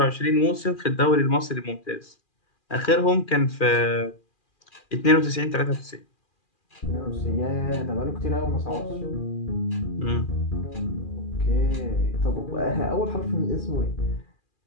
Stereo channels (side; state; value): right; late; 2.4 ms